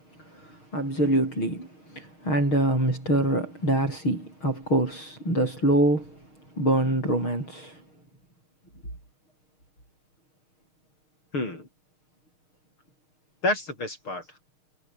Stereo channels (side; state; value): right; late; 6.5 ms